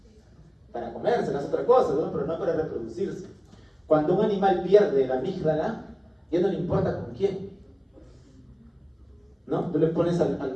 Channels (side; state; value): both; identical; correlation 1.00